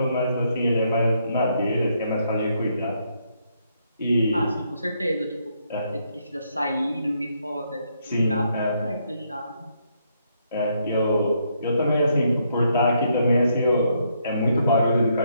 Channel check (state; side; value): inverted; both; correlation -0.75